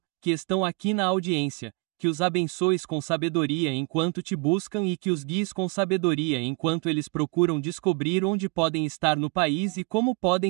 que estão aqui na audiência, que os abençoes com sabedoria enquanto te buscam e que os guies com sabedoria enquanto eles procuram descobrir onde podem estar no país e como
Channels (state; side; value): quieter; left; 30.3 dB